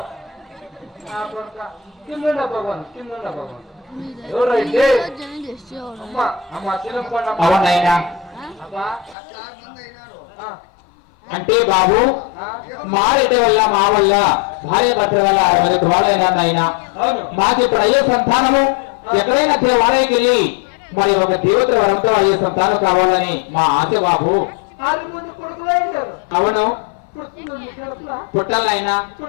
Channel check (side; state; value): right; drops out; at 9.2 s